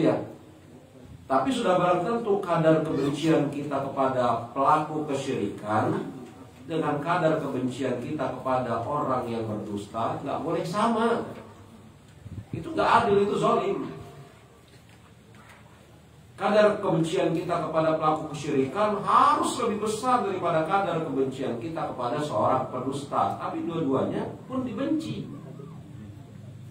ya. Tapi sudah barang tentu kadar kebencian kita kepada pelaku kesyirikan dengan kadar kebencian kita kepada orang yang berdusta nggak boleh sama. Itu nggak adil, itu zalim. Kadar kebencian kita kepada pelaku kesyirikan harus lebih besar daripada kadar kebencian kita kepada seorang pendusta. Tapi dua-duanya pun dibenci.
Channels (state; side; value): identical; both; correlation 1.00